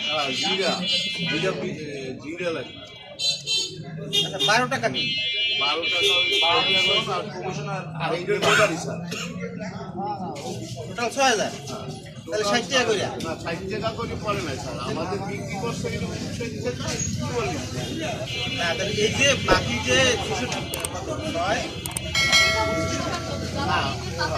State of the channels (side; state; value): both; identical; correlation 1.00